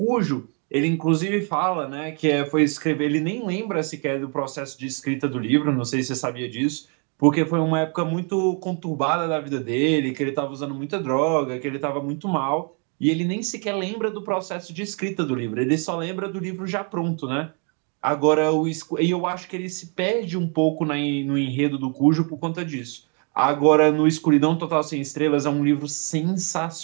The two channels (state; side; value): quieter; left; 38.7 dB